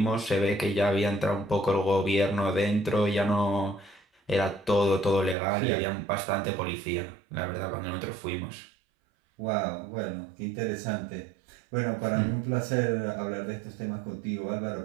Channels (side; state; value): left; drops out; at 5.4 s